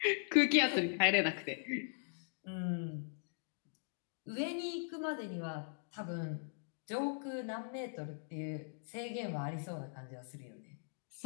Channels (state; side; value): silent; right; digital silence